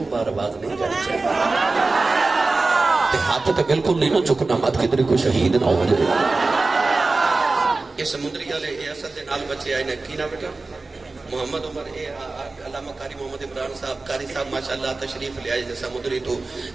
بار باز نہیں جانی چاہیے ہاتھ تو بالکل نہیں نہ چکنا مت کدھر کو شہید نہ ہو جائے یہ سمندری والے یہ اصل دے نال بچے آئے نے کی نہ بیٹا محمد عمر علامہ قاری محمد عمران صاحب قاری صاحب ماشاءاللہ تشریف لے آئے سمندری تو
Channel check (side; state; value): left; quieter; 3.5 dB